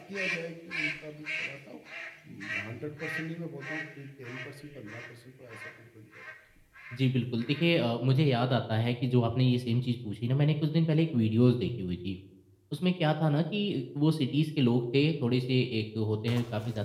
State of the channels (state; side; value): identical; both; correlation 1.00